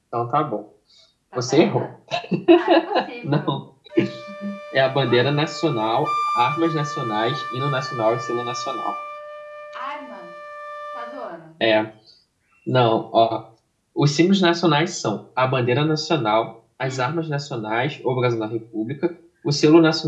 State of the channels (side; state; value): both; identical; correlation 1.00